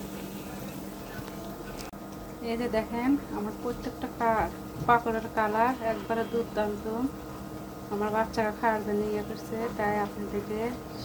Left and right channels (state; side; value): identical; both; correlation 1.00